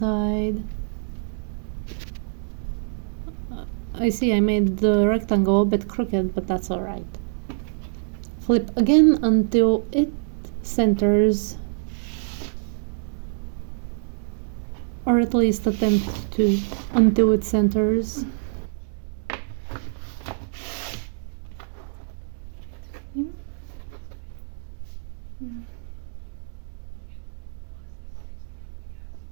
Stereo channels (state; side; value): silent; left; 62 dB below the other